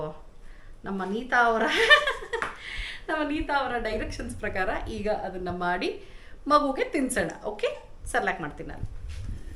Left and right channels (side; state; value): both; identical; correlation 1.00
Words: ನಮ್ಮ ನೀತಾ ಅವರ ಡೈರೆಕ್ಷನ್ಸ್ ಪ್ರಕಾರ ಈಗ ಅದನ್ನು ಮಾಡಿ ಮಗುಗೆ ತಿನ್ಸೋಣ. ಓಕೆ, ಸೆರ್ಲಾಕ್ ಮಾಡ್ತೀನಿ ನಾನು.